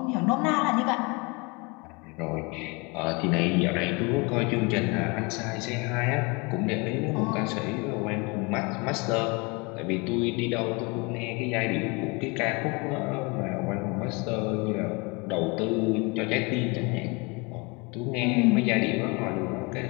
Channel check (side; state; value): right; quieter; 28.6 dB